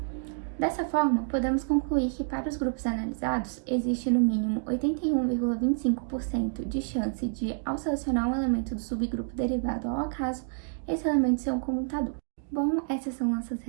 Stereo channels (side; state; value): left; silent; digital silence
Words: Dessa forma, podemos concluir que para os grupos analisados, existe no mínimo 81,25% de chance de, ao selecionar um elemento do subgrupo derivado ao acaso, esse elemento ser um comutador. Bom, essas são nossas